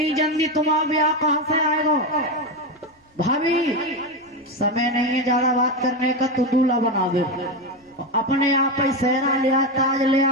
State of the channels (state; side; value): normal; both; correlation 0.13